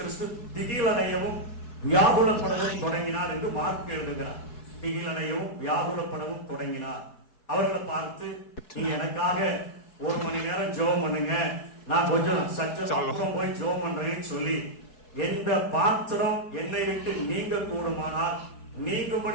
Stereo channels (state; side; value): late; right; 4.7 ms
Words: திகிலடையவும் வியாகுலப்படவும் தொடங்கினார் என்று மார்க் எழுதுகிறார். திகிலடையவும் வியாகுலப்படவும் தொடங்கினார். அவர்களை பார்த்து நீங்க எனக்காக 1 மணி நேரம் ஜெபம் பண்ணுங்க, நான் கொஞ்சம் சற்று போய் ஜெபம் பண்றேன்னு சொல்லி எந்த பாத்திரம் என்னை விட்டு நீங்க கூடுமானால்